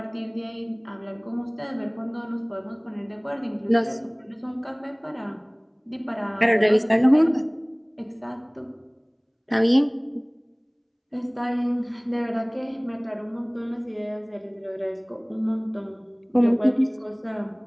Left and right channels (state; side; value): identical; both; correlation 1.00